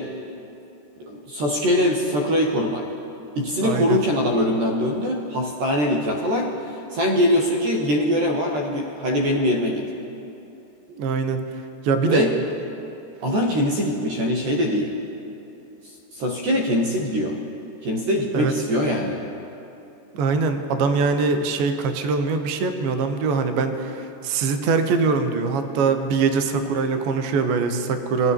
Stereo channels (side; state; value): left; late; 14 ms